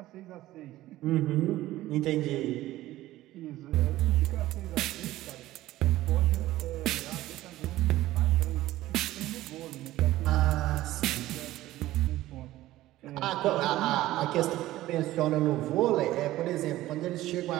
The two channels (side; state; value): left; quieter; 15.8 dB